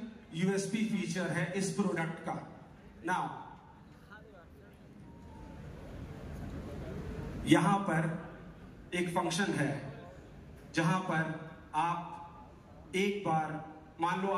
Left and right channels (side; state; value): both; identical; correlation 1.00